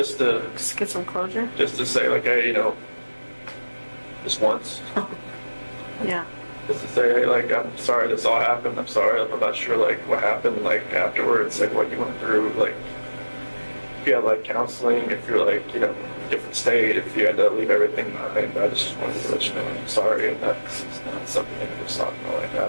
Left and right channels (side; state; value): both; inverted; correlation -1.00